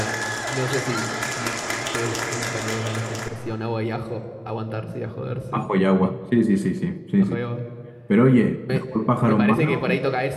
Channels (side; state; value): both; identical; correlation 1.00